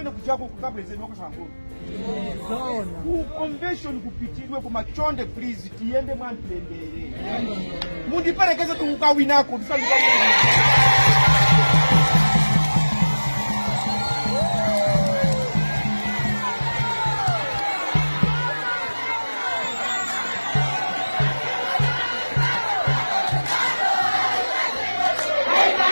kujako kukapresident wakasangolo. Ku convention kupitirwe kumachonde please tiyende mwantendere. Mundiperekeze tukukawinako ndisanduka.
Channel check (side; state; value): both; inverted; correlation -1.00